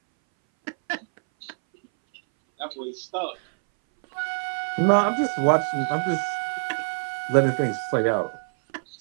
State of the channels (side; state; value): left; silent; 60 dB below the other